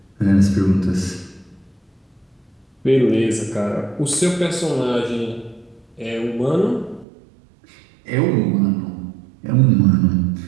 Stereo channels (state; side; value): drops out; left; at 7.1 s